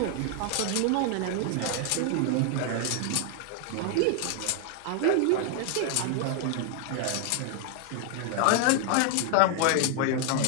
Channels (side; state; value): both; different; correlation 0.00